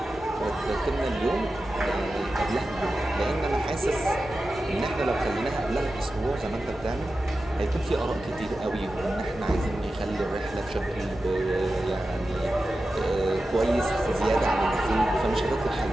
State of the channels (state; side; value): normal; both; correlation 0.93